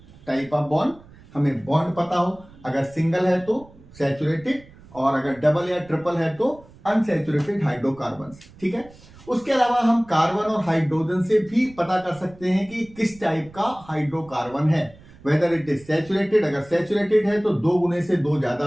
type of bond, हमें बॉन्ड पता हो, अगर सिंगल है तो सैचुरेटेड, और अगर डबल या ट्रिपल है तो अनसैचुरेटेड हाइड्रोकार्बन. ठीक है, उसके अलावा हम कार्बन और हाइड्रोजन से भी पता कर सकते हैं कि किस टाइप का हाइड्रोकार्बन है, वेदर इट इज सैचुरेटेड. अगर सैचुरेटेड है तो 2 गुने से 2 ज्यादा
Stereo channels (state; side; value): noise; right; rumble, 23 dB below the sound